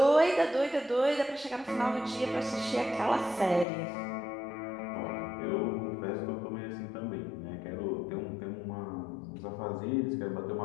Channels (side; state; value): right; drops out; at 3.7 s